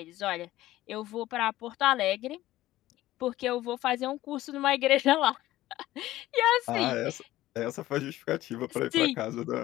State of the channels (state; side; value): quieter; right; 15.6 dB